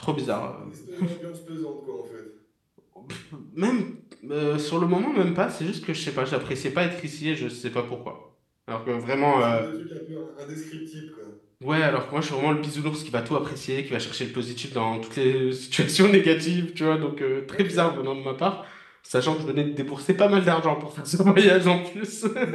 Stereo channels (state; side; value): identical; both; correlation 1.00